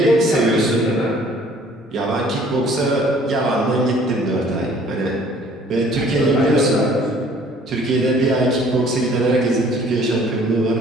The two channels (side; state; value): both; normal; correlation 0.55